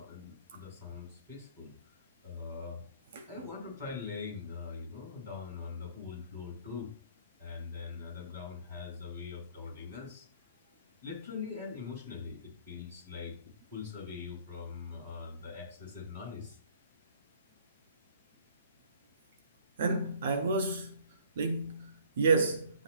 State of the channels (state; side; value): inverted; both; correlation -0.58